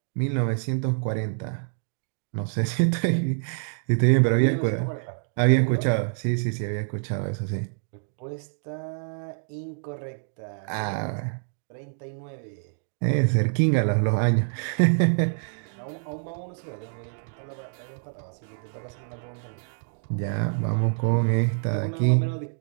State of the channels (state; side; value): silent; left; digital silence